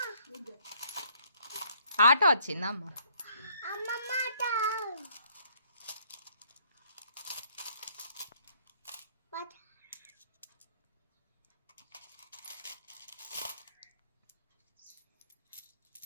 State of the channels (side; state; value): both; inverted; correlation -0.65